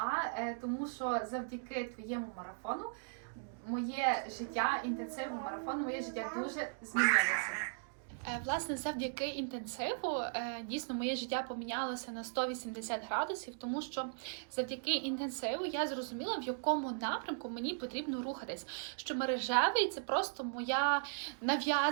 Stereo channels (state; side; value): silent; left; digital silence